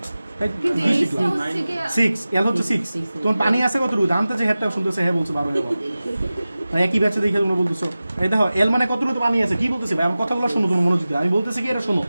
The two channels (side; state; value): both; inverted; correlation -0.96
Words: 6, এল হচ্ছে 6। তোমার পানি আছে কত? দামতে যে হেডটা শুনতেছে হ্যাঁ বলছে 12 মানে একই ব্যাচে দেখে তোমরা বলতেছো। এই দেখো এল মানে কতটুকু পানি আছে, কি বলতেছি ভাই? আমার কথাগুলো শোনো তুমি মনোযোগ দিয়ে। আমি বলতেছি কি এটা শোনো,